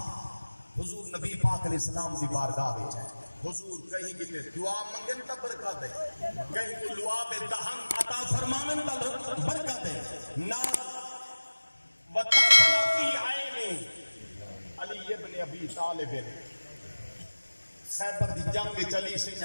حضور نبی پاک علیہ السلام دی بارگاہ بیچ ہے حضور کہیں کہ دعا منگن تا برکت ہے کہیں کہ لعاب دہن عطا فرمانن تا برکت ہے نار وطفل فی عین علی ابن ابی طالب خیبر دی جنگ چلی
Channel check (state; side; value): inverted; both; correlation -1.00